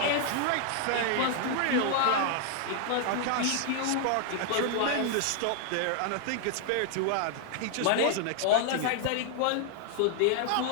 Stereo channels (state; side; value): different; both; correlation 0.00